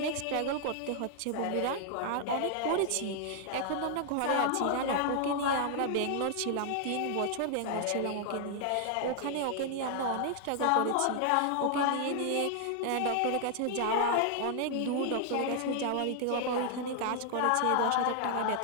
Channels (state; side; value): different; both; correlation 0.00